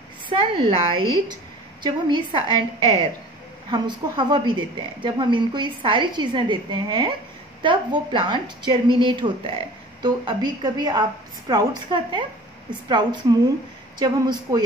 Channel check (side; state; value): both; normal; correlation 0.44